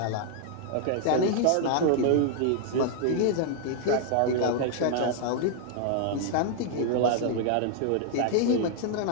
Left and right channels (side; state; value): both; different; correlation 0.00